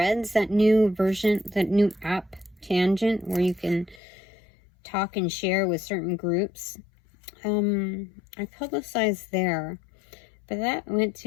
that new version, that new app Tangent where you can talk and share with certain groups. I publicized there, but that went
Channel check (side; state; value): right; drops out; at 4.0 s